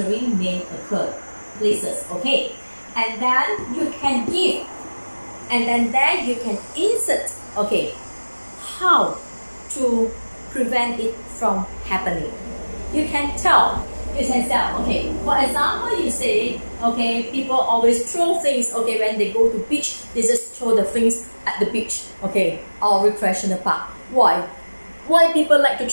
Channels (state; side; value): inverted; both; correlation -1.00